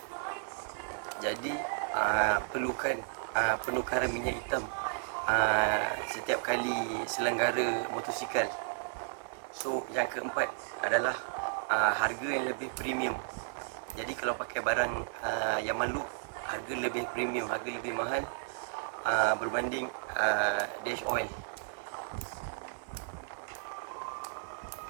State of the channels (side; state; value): left; silent; 55 dB below the other